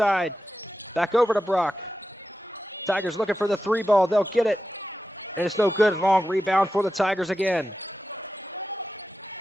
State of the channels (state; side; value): normal; both; correlation 0.91